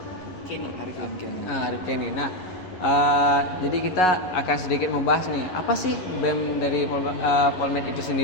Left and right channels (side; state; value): right; late; 11 ms